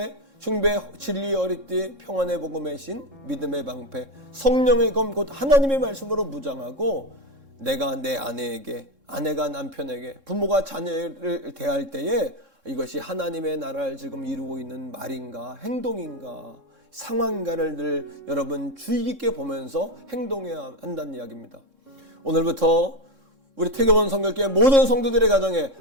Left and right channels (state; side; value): late; left; 3.7 ms